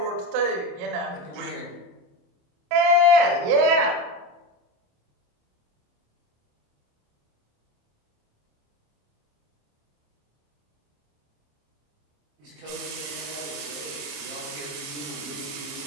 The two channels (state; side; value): late; left; 28 ms